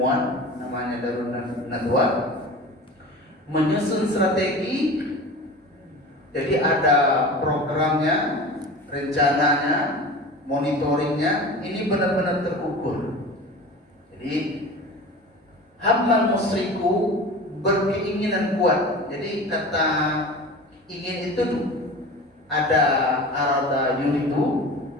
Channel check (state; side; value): normal; both; correlation 0.35